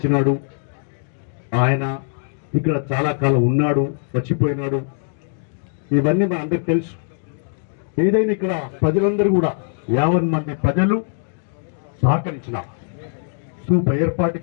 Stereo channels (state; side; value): silent; right; digital silence